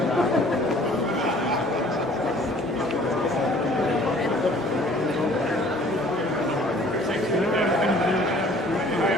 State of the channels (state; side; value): normal; both; correlation 0.53